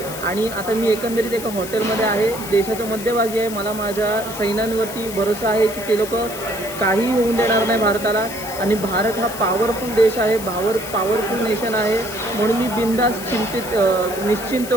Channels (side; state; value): left; noise; hiss, 11 dB below the sound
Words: आणि आता मी एकंदरीत एका हॉटेलमध्ये आहे, देशाच्या मध्यभागी आहे. मला माझ्या सैन्यांवरती भरोसा आहे की ते लोक काहीही होऊन देणार नाही भारताला. आणि भारत हा पॉवरफुल देश आहे, पॉवरफुल नेशन आहे. म्हणून मी बिनधास्त निश्चिंत